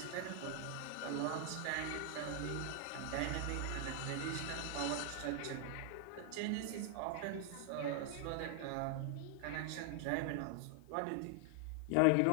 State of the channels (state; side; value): different; both; correlation 0.00